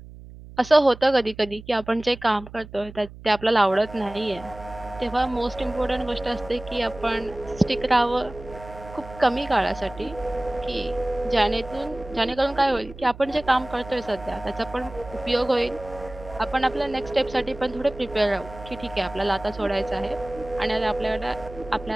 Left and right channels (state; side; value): noise; right; hum, 16 dB below the sound